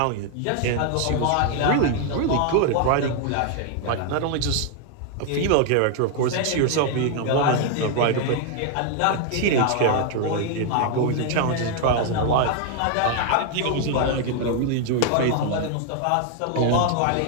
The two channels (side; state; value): both; different; correlation 0.00